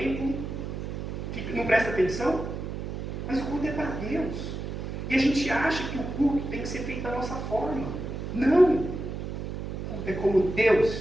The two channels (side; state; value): right; noise; hum, 6 dB below the sound